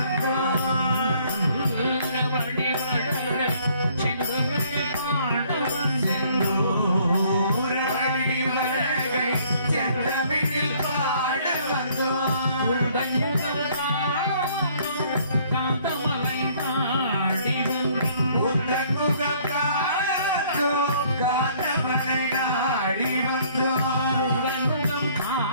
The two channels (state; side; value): inverted; both; correlation -0.60